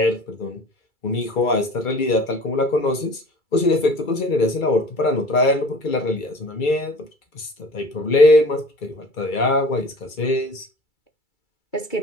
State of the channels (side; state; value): right; late; 2.3 ms